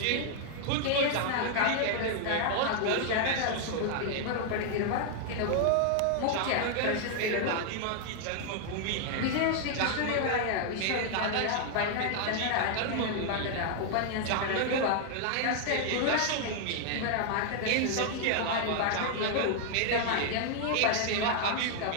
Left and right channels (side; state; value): both; different; correlation 0.00